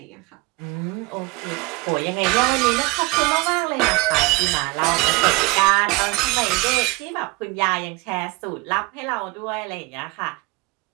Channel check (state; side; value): quieter; left; 24.4 dB